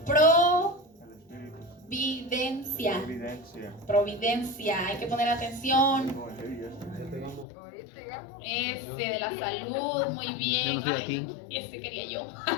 Providencia. Providencia. Hay que poner atención. Ese de la salud, muy bien. Yo no estoy aquí. Ese quería yo.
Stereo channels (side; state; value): right; drops out; at 7.5 s